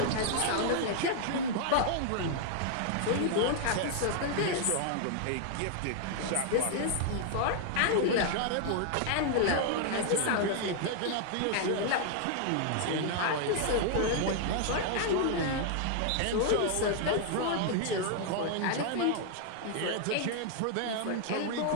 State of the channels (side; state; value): both; different; correlation 0.00